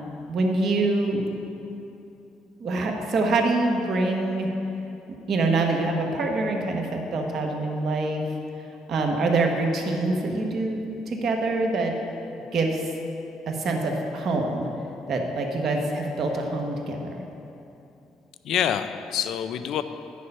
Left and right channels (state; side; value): normal; both; correlation 0.70